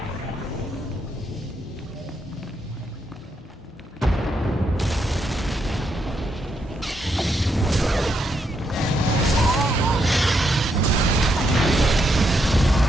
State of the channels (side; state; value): both; normal; correlation 0.79